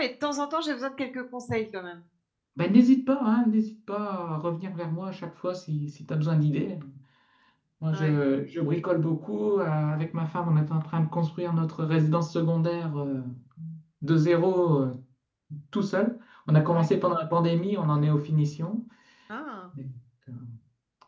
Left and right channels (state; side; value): identical; both; correlation 1.00